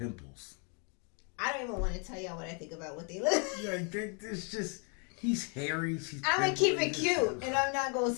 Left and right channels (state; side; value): quieter; right; 37.0 dB